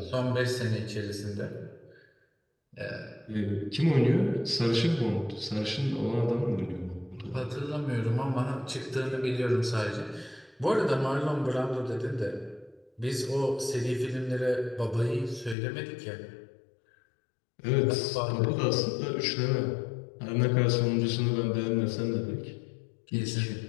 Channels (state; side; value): drops out; right; at 15.6 s